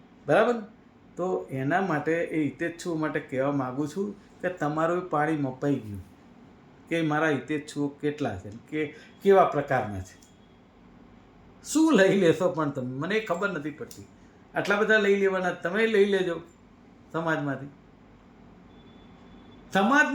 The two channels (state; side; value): identical; both; correlation 1.00